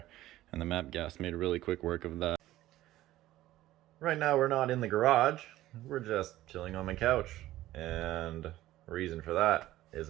and the MAP gas made really quick work of that. Right now we're not in the garage, we're just chilling on my couch, and the reason for that is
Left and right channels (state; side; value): quieter; left; 15.3 dB